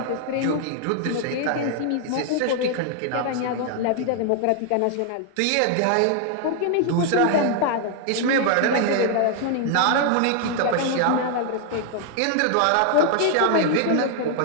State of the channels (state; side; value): different; both; correlation 0.00